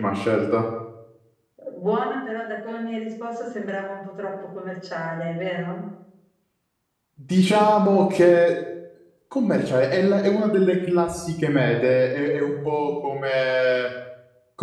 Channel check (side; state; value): both; identical; correlation 1.00